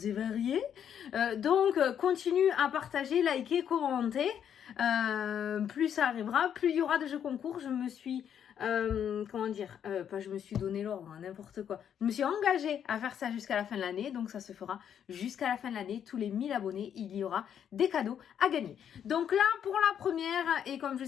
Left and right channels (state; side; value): quieter; right; 8.9 dB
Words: et variés. Donc, continue à partager, liker, commenter. Plus ça arrivera, plus il y aura de jeux concours. Je me suis... je me suis donné l'ordre, hein, n'importe quoi. Je me suis engagée à faire ça jusqu'à la fin de l'année, donc ça se fera jusqu'à la fin de l'année. Tous les 1000 abonnés, il y aura des cadeaux à gagner. Donc là, pour la première, et comme je